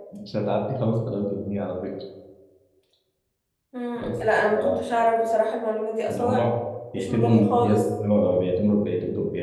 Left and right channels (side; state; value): both; identical; correlation 1.00